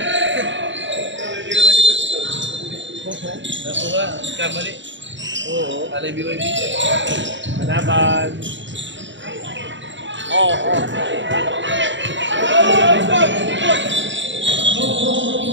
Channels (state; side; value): late; left; 0.54 ms